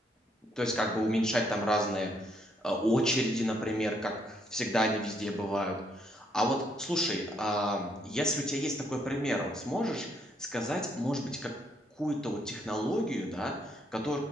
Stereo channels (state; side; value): normal; both; correlation 0.72